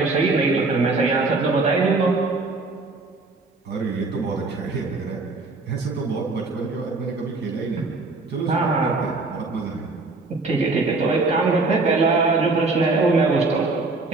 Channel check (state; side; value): quieter; left; 3.5 dB